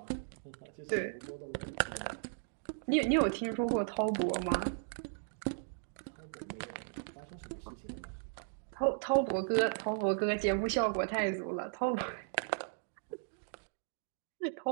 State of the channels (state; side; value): silent; left; digital silence